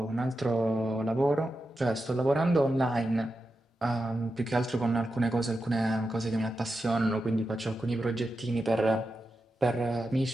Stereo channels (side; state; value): both; normal; correlation 0.89